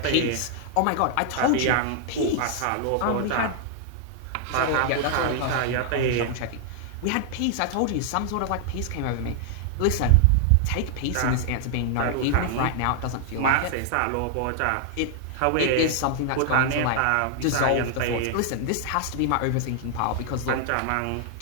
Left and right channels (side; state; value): both; different; correlation 0.00